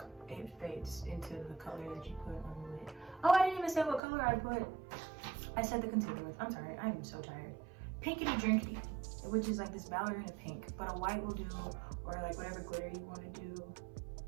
it fades into the color that you put on the lid. Oh, I didn't even say what color I put. I said the concealer with. I'm sorry, I am so tired. Pinkity drinkity, which is like this ballerina pink, but a white will do, or like whatever glitter you want to do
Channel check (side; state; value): left; drops out; at 4.0 s